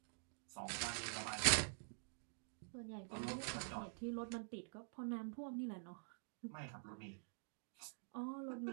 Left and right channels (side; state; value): left; silent; digital silence